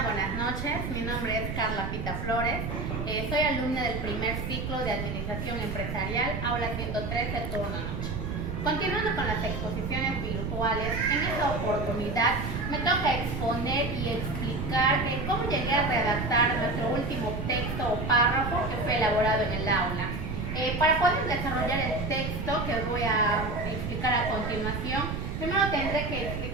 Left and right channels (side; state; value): right; noise; rumble, 4 dB below the sound